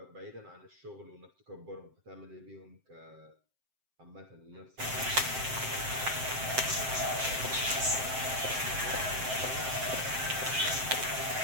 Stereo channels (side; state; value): left; late; 7.7 ms